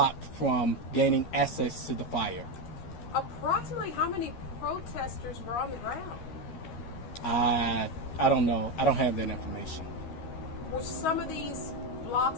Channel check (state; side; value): late; right; 13 ms